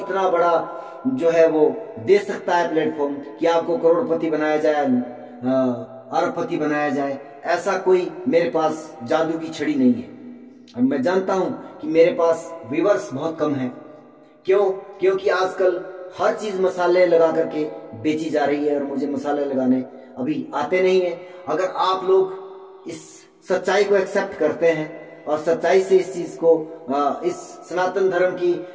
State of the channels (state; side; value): identical; both; correlation 1.00